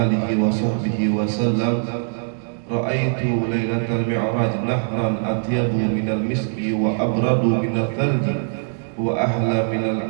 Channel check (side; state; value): left; silent; digital silence